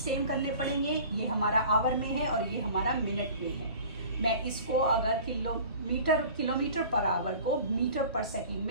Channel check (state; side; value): inverted; both; correlation -0.43